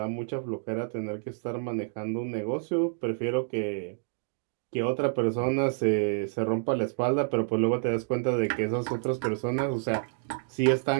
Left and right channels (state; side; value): silent; left; digital silence